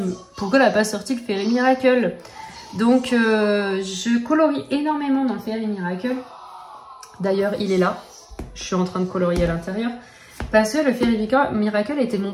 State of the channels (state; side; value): identical; both; correlation 1.00